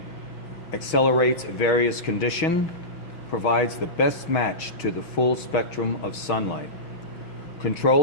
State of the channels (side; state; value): right; late; 6.3 ms